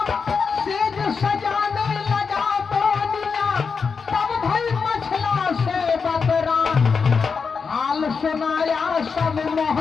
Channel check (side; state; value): right; quieter; 5.4 dB